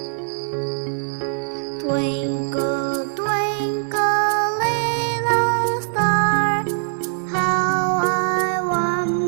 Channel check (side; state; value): left; silent; digital silence